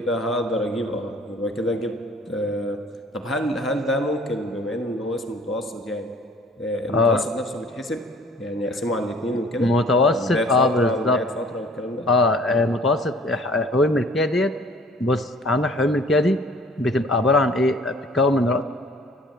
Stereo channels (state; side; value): normal; both; correlation 0.53